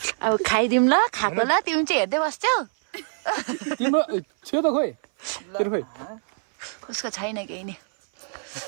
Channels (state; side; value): silent; left; 58 dB below the other